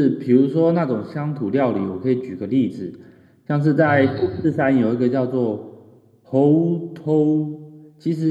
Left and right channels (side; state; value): both; identical; correlation 1.00